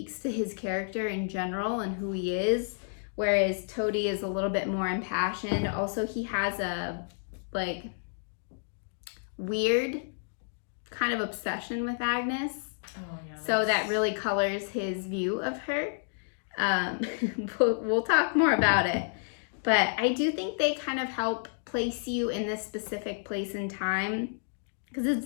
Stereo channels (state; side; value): silent; right; digital silence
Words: to his character in general and who he is, whereas Tóti is a little bit more impassioned. Also, he has a like weird kind of obsession with Agnes. Oh, yeah, so that really colors his view of her. We'll talk more about it, but I do think they kind of help place you in this specific place and time, because